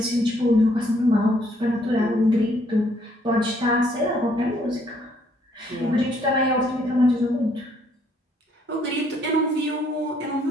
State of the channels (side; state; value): both; normal; correlation 0.67